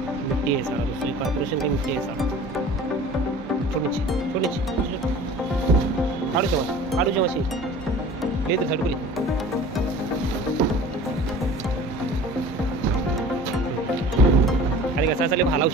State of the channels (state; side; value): normal; both; correlation 0.43